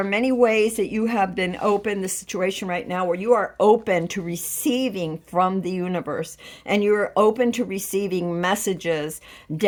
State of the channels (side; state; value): both; identical; correlation 1.00